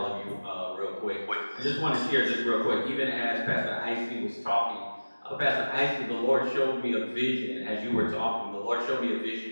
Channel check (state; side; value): inverted; both; correlation -1.00